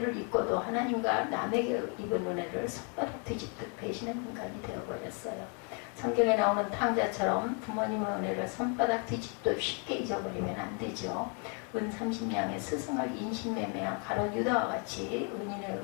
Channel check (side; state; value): right; quieter; 37.6 dB